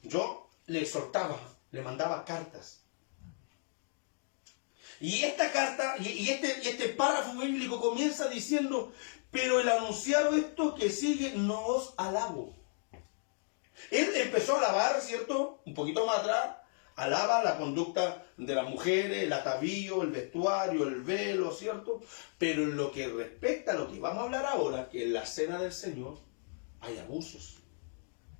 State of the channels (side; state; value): right; silent; 55 dB below the other